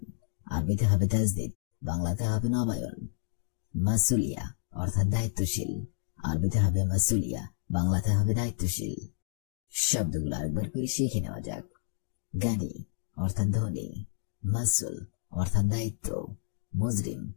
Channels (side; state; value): right; silent; digital silence